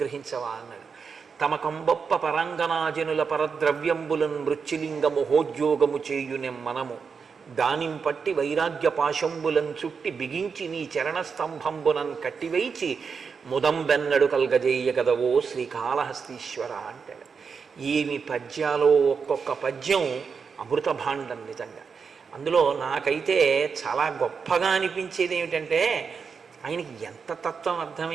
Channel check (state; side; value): quieter; left; 5.7 dB